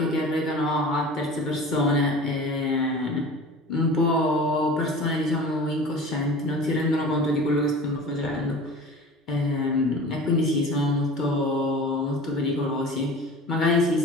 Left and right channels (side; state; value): both; normal; correlation 0.39